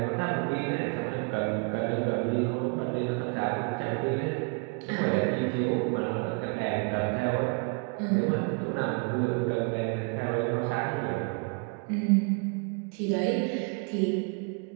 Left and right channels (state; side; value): quieter; left; 35.2 dB